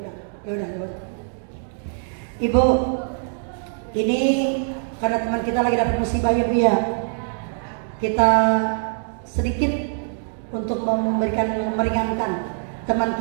udah. Ibu, ini karena teman kita lagi dapat musibah ya Bu ya. Kita sedikit untuk meringankan teman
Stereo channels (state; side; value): silent; left; digital silence